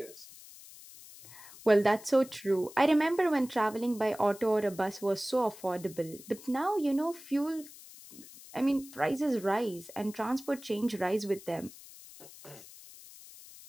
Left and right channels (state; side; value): noise; left; hiss, 18 dB below the sound